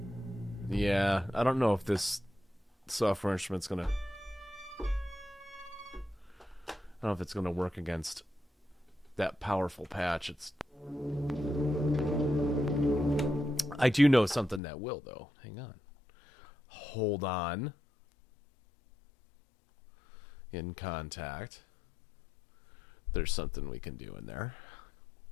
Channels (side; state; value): right; drops out; at 14.6 s